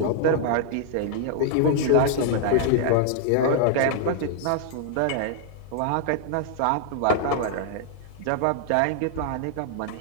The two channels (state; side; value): different; both; correlation 0.00